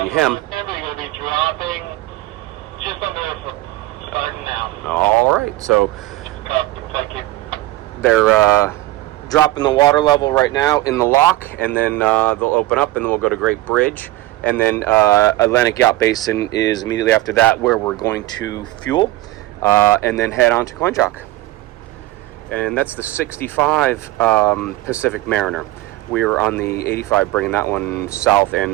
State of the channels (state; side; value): quieter; left; 17.3 dB